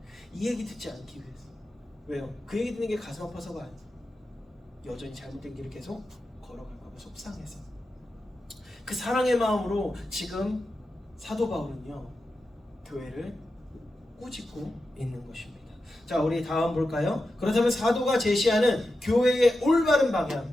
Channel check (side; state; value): both; normal; correlation 0.90